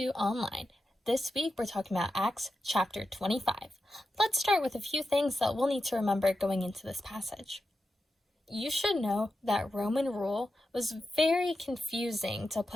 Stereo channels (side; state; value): both; normal; correlation 0.90